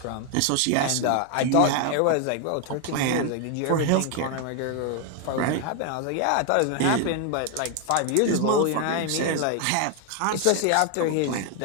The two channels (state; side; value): different; both; correlation 0.00